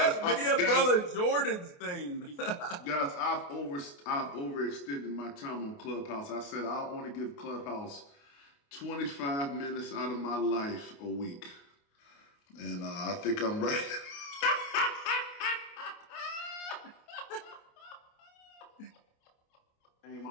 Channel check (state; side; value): late; right; 28 ms